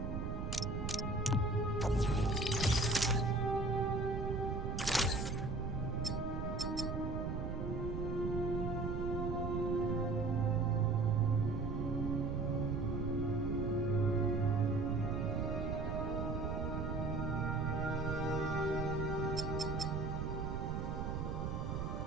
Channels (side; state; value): right; noise; rumble, 2 dB below the sound